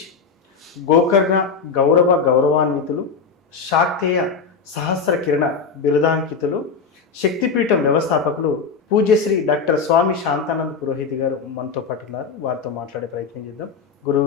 గోకర్ణ గౌరవాన్వితులు, శాక్తేయ సహస్ర కిరణ బిరుదాంకితులు, శక్తిపీఠం వ్యవస్థాపకులు పూజ్యశ్రీ డాక్టర్ స్వామి శాంతానంద పురోహిత్ గారు మనతో పాటు ఉన్నారు. వారితో మాట్లాడే ప్రయత్నం చేద్దాం.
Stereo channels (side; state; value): right; quieter; 5.3 dB